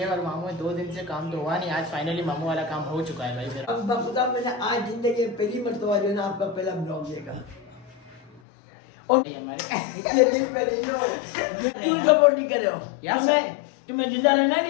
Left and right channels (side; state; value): right; drops out; at 8.4 s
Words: मामू में 2 दिन से काम तो हुआ नहीं, आज फाइनली मामू वाला काम हो चुका है भाई मेरा। अब खुदा मैंने आज जिंदगी पहली मरतबा जो है ना आपका पहला ब्लॉग देखा और हमारे दिल में क्यों सपोर्ट नहीं कर रहे हो यार? तुम्हें जिंदा रहना